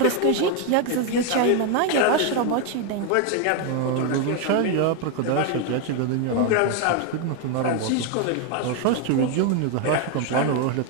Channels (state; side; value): different; both; correlation 0.01